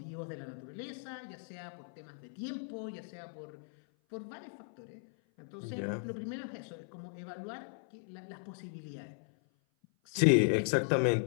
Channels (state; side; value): silent; right; 53 dB below the other